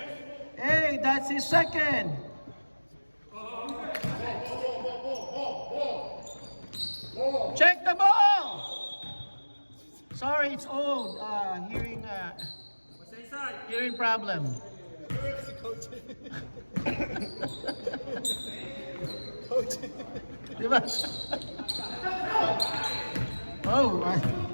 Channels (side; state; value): both; inverted; correlation -1.00